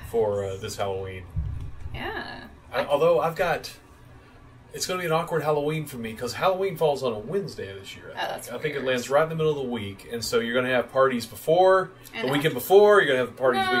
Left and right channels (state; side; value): identical; both; correlation 1.00